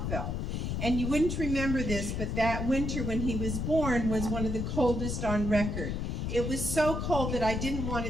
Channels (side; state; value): left; noise; rumble, 2 dB below the sound